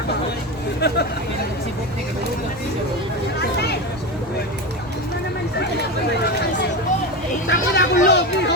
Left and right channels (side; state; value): both; normal; correlation 0.20